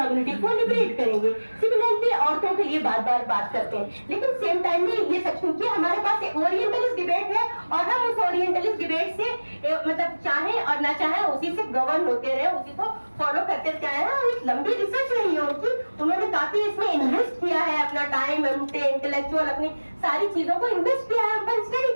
को लिबरेट करेंगे। सिमिलरली औरतों के लिए बार बार बात करते हैं, लेकिन सेम टाइम में ये सच क्योंकि हमारे पास एक ओरिएंटलिस्ट डिबेट है और हम उस ओरिएंटलिस्ट डिबेट से मतलब चाहे और ना चाहे उसी से गवर्न होते रहे, उसी को फॉलो करते चाहे। और लंबी रिसर्च रही है उनकी, उन्होंने काफी इसमें इन्वेस्ट किया है, अपना टाइम, इंटेलेक्चुअल अपनी सारी चीजों को इन्वेस्ट किया है पर स्टडी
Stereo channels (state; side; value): inverted; both; correlation -1.00